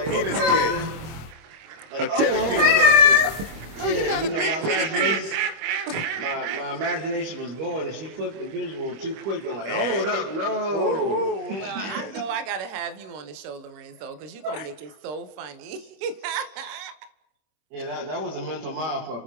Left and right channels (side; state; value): left; late; 25 ms